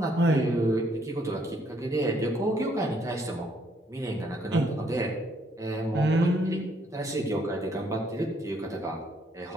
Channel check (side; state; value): both; normal; correlation 0.68